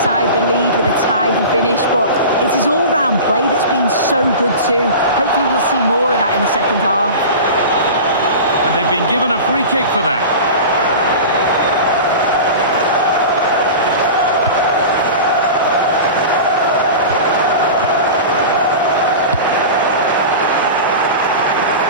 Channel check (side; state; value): both; inverted; correlation -0.32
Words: the lead with a tidy finish, but it's his all-round play that's been so good too. Hopefully we'll see more of that in the second half. And they've been given a free kick for that.